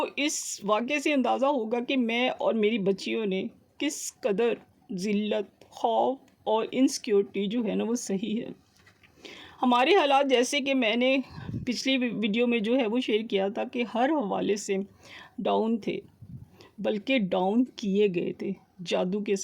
इस वाक़ये से अंदाज़ा होगा कि मैं और मेरी बच्चियों ने किस कदर ज़िल्लत, खौफ और इनसिक्योरिटी जो है ना वो सही है। हमारे हालात जैसे कि मैंने पिछली वीडियो में जो है वो शेयर किया था कि हर हवाले से डाउन थे, बल्कि डाउन किए गए थे जादू के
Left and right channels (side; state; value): both; identical; correlation 1.00